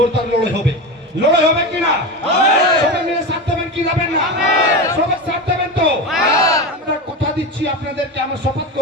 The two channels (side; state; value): both; normal; correlation 0.22